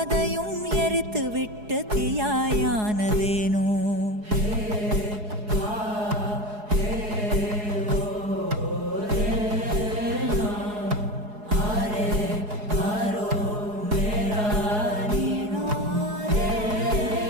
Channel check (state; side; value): late; left; 4.8 ms